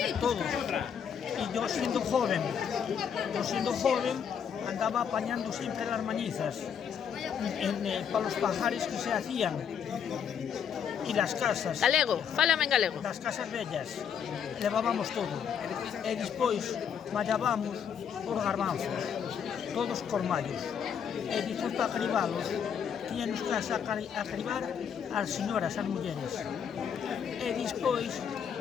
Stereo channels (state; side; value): quieter; right; 7.7 dB